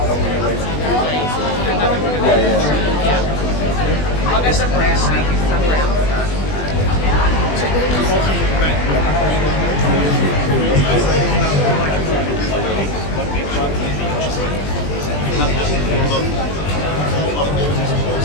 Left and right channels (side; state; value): right; late; 20 ms